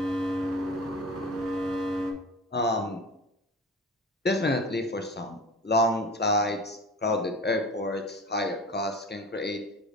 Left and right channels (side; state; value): both; normal; correlation 0.34